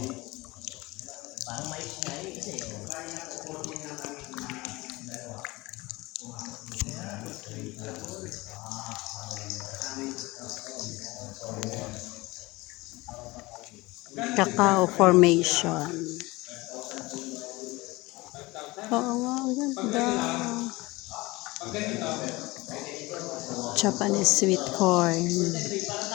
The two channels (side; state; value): right; quieter; 21.8 dB